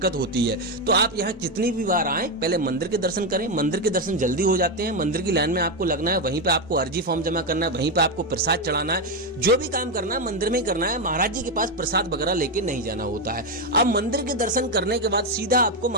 होती है। तो आप यहाँ जितनी भी बार आए पहले मंदिर के दर्शन करें। मंदिर के दर्शन जल्दी हो जाते हैं। मंदिर की लाइन में आपको लगना है, वहीं पे आपको अर्जी फॉर्म जमा करना है, वहीं पे आपको प्रसाद चढ़ाना है। जो भी काम करना है मंदिर में ही करना है, महाराज जी के पास प्रसाद वगैरह लेके नहीं जाना होता है। अब मंदिर के दर्शन करने के बाद सीधा आपको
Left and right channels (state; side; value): normal; both; correlation 0.08